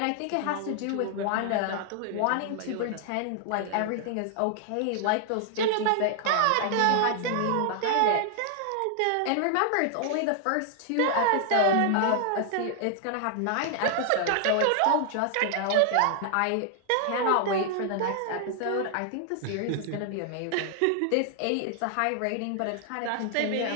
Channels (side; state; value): both; different; correlation 0.00